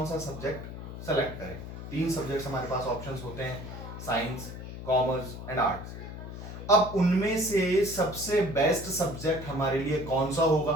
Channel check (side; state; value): left; noise; hum, 10 dB below the sound